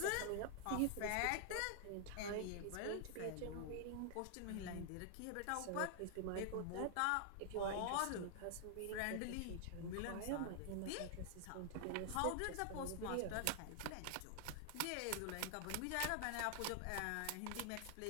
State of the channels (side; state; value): both; different; correlation 0.00